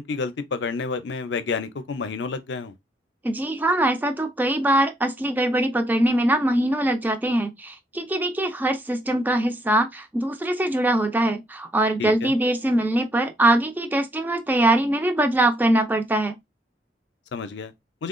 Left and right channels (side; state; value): both; normal; correlation 0.71